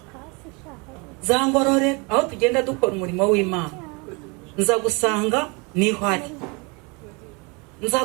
za Ngororero, aho tugenda dukora umurimo w'Imana. Nza gusanga niho ari, nza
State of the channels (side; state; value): left; quieter; 29.7 dB